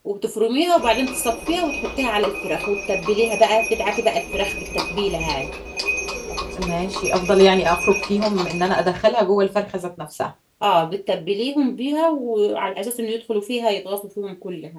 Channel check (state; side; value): identical; both; correlation 1.00